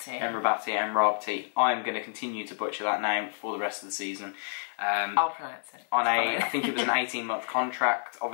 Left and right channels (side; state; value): right; silent; digital silence